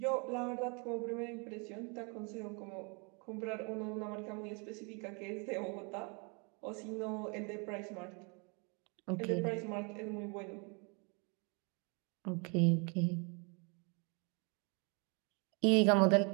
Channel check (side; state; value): left; quieter; 33.7 dB